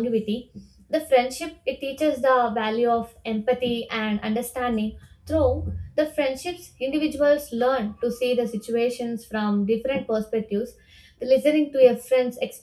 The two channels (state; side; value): identical; both; correlation 1.00